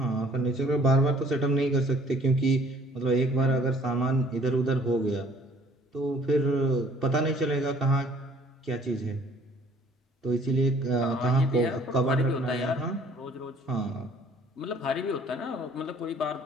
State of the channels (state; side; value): normal; both; correlation 0.56